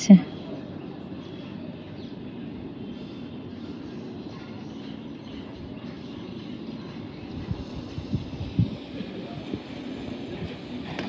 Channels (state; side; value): identical; both; correlation 1.00